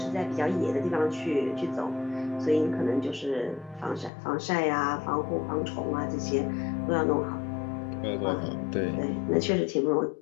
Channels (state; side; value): drops out; right; at 4.1 s